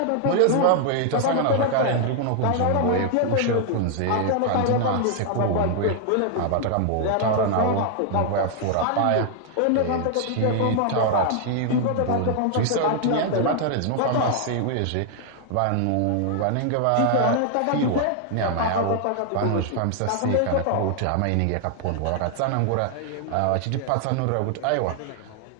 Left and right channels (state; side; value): different; both; correlation 0.00